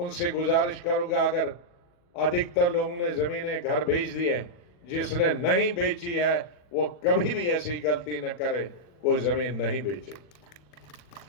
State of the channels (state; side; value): late; right; 40 ms